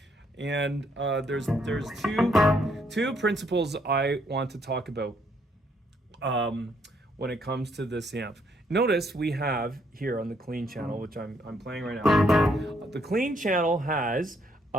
And there's two principles I want to talk about when it comes to this amp. Notice we have here on the clean channel, which I'm playing right now. The clean channel has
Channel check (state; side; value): normal; both; correlation 0.71